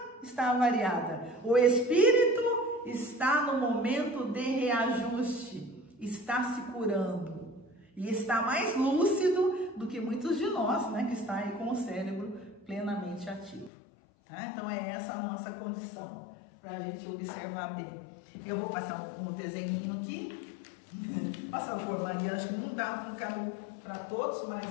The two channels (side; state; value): right; drops out; at 13.7 s